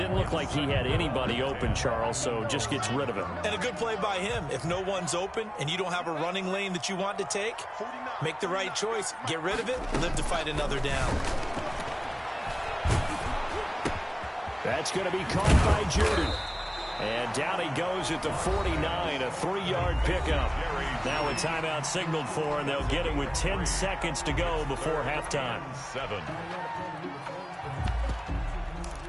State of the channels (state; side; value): identical; both; correlation 1.00